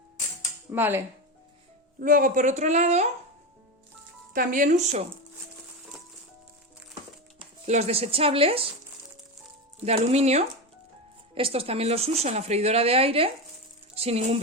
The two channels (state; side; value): normal; both; correlation 0.17